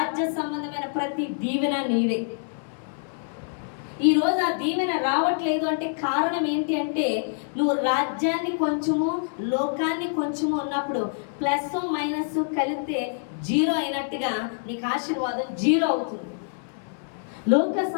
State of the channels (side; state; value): right; silent; digital silence